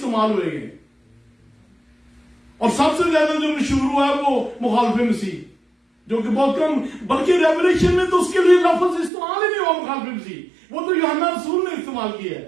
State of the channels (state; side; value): drops out; left; at 9.1 s